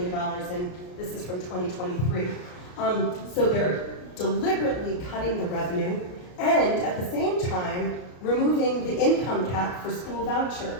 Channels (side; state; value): right; late; 33 ms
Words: and this is from 2023. So they're deliberately cutting the revenue and at the same time removing the income cap for school